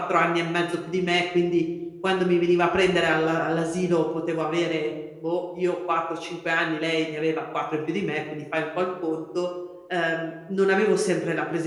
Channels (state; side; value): identical; both; correlation 1.00